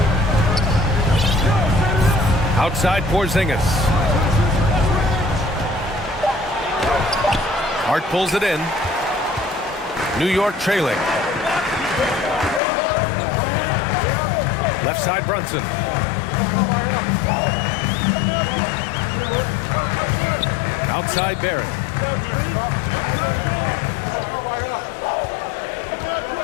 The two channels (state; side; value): drops out; right; at 12.6 s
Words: Outside Porzingis. Hart pulls it in. New York trailing. Left side Brunson. Outside Barrett.